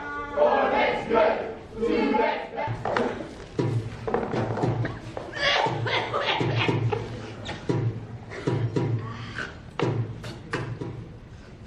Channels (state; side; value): identical; both; correlation 1.00